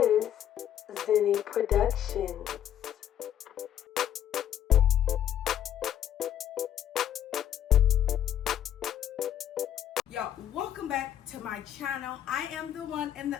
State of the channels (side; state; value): right; quieter; 10.6 dB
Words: Zinni Productions. Y'all, welcome back to my channel. I am the one and